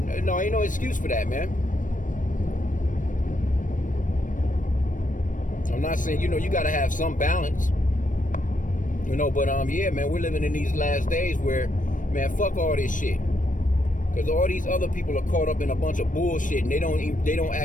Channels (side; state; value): right; late; 0.38 ms